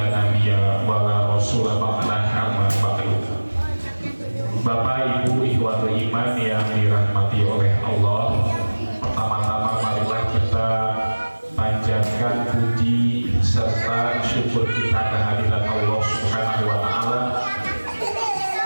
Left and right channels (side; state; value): both; inverted; correlation -1.00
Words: nabiyya wa la rasula ba'dahu amma ba'du. Bapak Ibu ikhwatul iman yang dirahmati oleh Allah, pertama-tama marilah kita panjatkan puji serta syukur kita kehadirat Allah Subhanahu wa taala